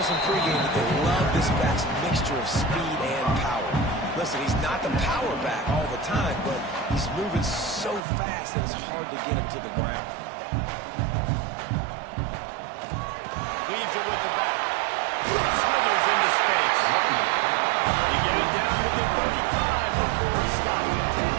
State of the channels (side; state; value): left; drops out; at 8.0 s